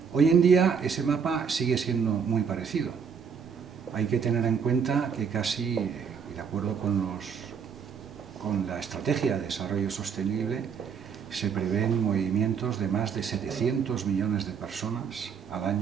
Hoy en día ese mapa sigue siendo muy parecido. Hay que tener en cuenta que casi, de acuerdo con la Estrategia de Desarrollo Sostenible, se prevén movimientos de más de 700 millones de personas al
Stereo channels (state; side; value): quieter; left; 6.6 dB